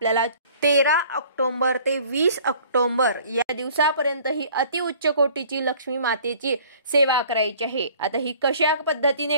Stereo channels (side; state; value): both; inverted; correlation -0.52